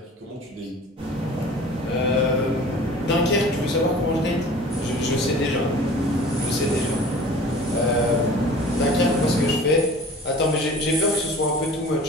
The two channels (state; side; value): normal; both; correlation 0.44